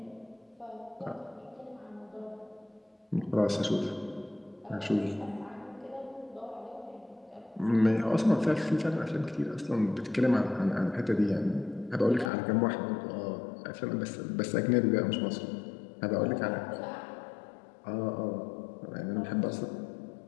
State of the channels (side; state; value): right; drops out; at 12.3 s